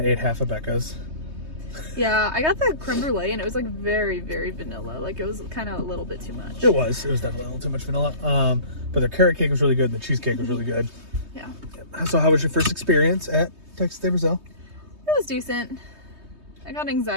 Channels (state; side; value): late; left; 3.2 ms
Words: ate half of Becca's. Yeah, I got the creme brulee, and it was like very, very vanilla. Like it was kind of a little bit too much. It was definitely a little too much vanilla. But the carrot cake was really good. The cheesecake was really good. Yeah. So how was your first experience at Texas de Brazil? It was decent. I got